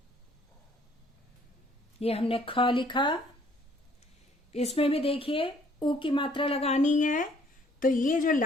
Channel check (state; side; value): normal; both; correlation 0.61